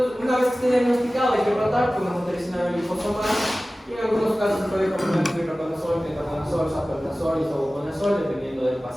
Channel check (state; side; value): normal; both; correlation 0.97